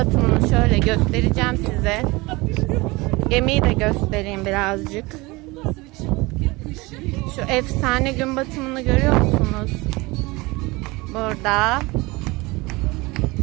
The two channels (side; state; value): left; quieter; 23.2 dB